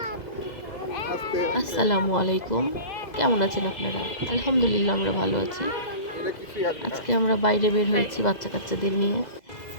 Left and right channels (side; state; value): right; late; 2.0 ms